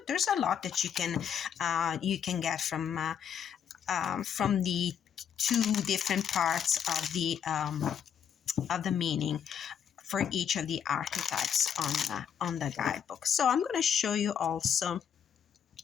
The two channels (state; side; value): quieter; right; 8.4 dB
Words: there's a lot that you can get from the two different parts of the meaning for each of the archetypes on the guidebook. So I'm going to show you also